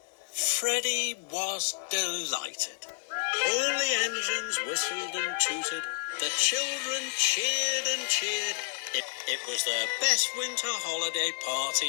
Freddie was delighted. All the engines whistled and tooted. The children cheered and cheered. It was their best winter holiday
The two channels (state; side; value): silent; right; 58 dB below the other